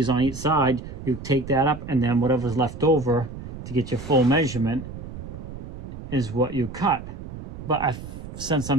on each side, you take that up, and then whatever's left over to get your full measurement is what you cut. But since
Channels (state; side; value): noise; right; rumble, 11 dB below the sound